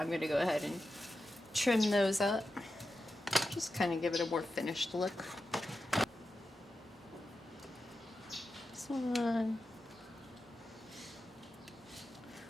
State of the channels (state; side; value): normal; both; correlation 0.91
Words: gonna go ahead and trim those up, just kind of give it a more finished look. This one,